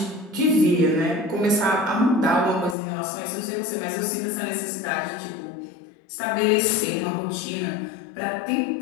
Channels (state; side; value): drops out; right; at 2.8 s